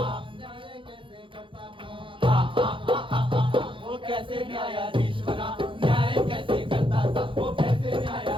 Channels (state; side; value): late; left; 0.25 ms